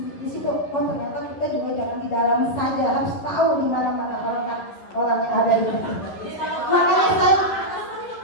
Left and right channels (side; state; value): right; late; 11 ms